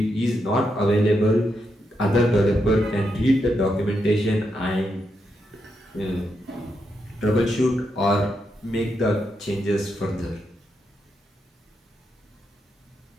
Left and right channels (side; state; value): both; normal; correlation 0.83